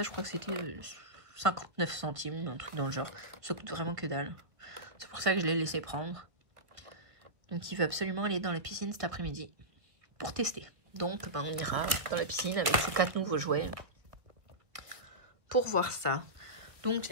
je crois que c'était 59 centimes, un truc dans le genre. Ça coûte vraiment que dalle. C'est pour ça que je l'ai laissé prendre. Donc il veut absolument aller dans la piscine cet après-midi pour tester. Donc ben, on ira dans la piscine avec ces 4 nouveaux jouets pour voir ça. Donc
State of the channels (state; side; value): late; left; 1.8 ms